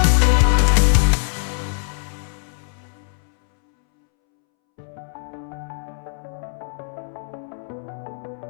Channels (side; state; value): right; silent; 64 dB below the other